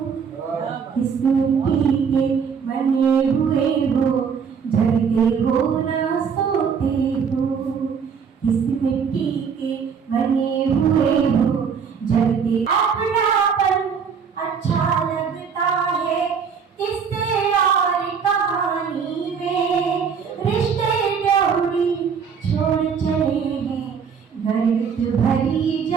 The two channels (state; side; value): quieter; left; 6.5 dB